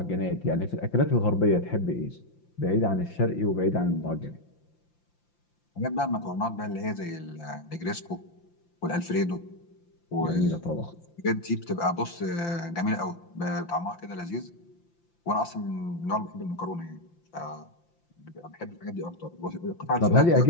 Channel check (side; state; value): right; late; 5.8 ms